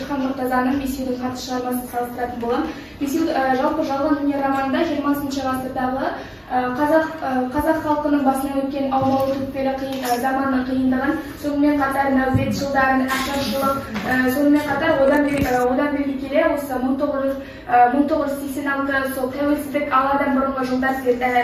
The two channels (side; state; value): both; identical; correlation 1.00